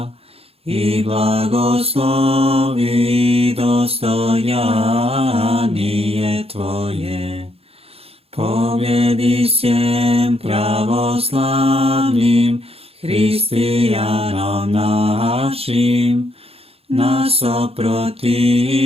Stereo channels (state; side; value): late; left; 0.28 ms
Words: i blagoslovi dostojanije Tvoje. Pobjedi svjem pravoslavnim hristijanom našim, nas